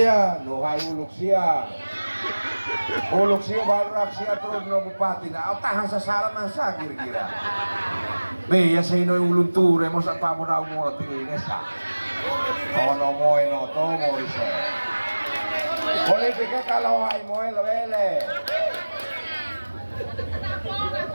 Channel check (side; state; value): both; inverted; correlation -1.00